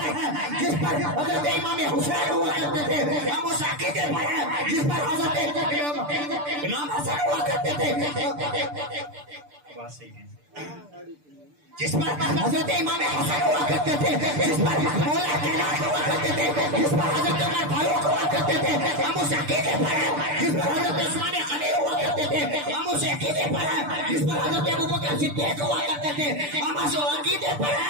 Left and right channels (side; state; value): left; late; 6.8 ms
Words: ہیں جس پر حضرت امام حسین ہوا کرتے تھے، ہم اس عقیدے پر ہیں جس پر حضرت امام حسن ہوا کرتے تھے، جس پر حضرت امام حسن ہوا کرتے تھے، جس پر مولا کائنات ہوا کرتے تھے، جس پر حضرت عمر فاروق ہوا کرتے تھے، ہم اس عقیدے پر ہیں جس پر حضرت عثمان غنی ہوا کرتے تھے، ہم اس عقیدے پر ہیں جس پر حضرت ابوبکر صدیق ہوا کرتے تھے، ہم اس عقیدے پر